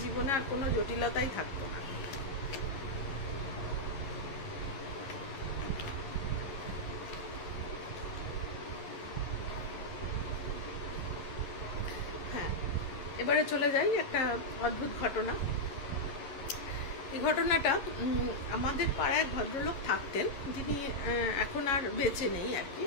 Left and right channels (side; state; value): right; late; 11 ms